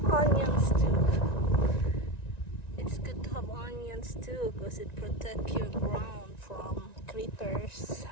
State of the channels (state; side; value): late; right; 1.9 ms